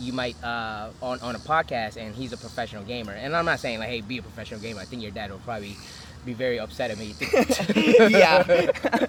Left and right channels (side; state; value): both; identical; correlation 1.00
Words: you might on a podcast, and he's a professional gamer. And I'm not saying like, hey, be a professional gamer. I think your dad will probably be very upset at me. Yeah.